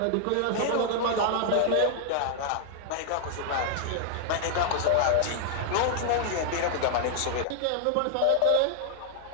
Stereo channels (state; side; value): different; both; correlation 0.00